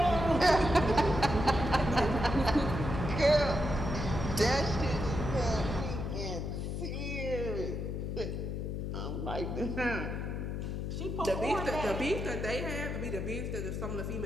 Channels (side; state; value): left; noise; hum, 3 dB below the sound